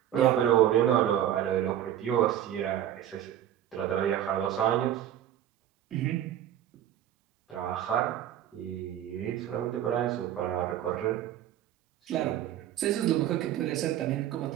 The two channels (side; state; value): left; quieter; 11.3 dB